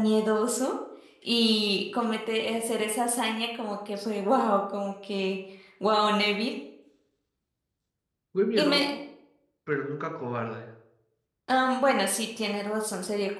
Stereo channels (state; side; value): identical; both; correlation 1.00